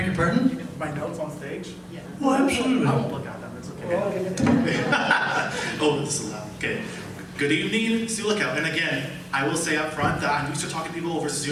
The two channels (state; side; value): identical; both; correlation 1.00